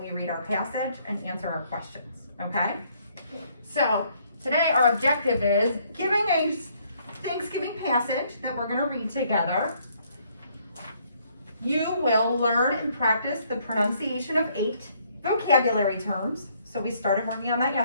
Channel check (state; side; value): inverted; both; correlation -0.67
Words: we read our passage and answer our questions, okay? So today our objective is giving a Thanksgiving passage that we're going to read together. You will learn and practice the pronunciation of 8 vocabulary terms. So we started working on that